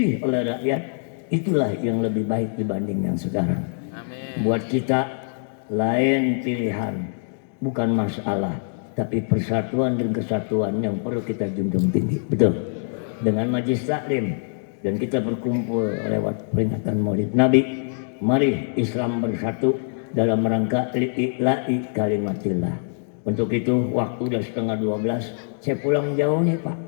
oleh rakyat itulah yang lebih baik dibanding yang sekarang. Amin. Buat kita lain pilihan, bukan masalah, tapi persatuan dan kesatuan yang perlu kita junjung tinggi. Betul. Dengan majlis taklim dan kita berkumpul lewat peringatan Maulid Nabi, mari Islam bersatu dalam rangka li'ila'i kalimatillah. Untuk itu waktu udah 11:30, saya pulang jauh nih Pak.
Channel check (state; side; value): silent; right; digital silence